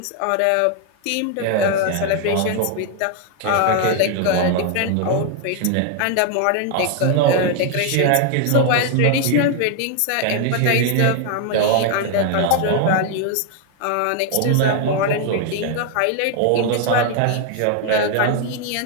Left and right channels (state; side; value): different; both; correlation 0.00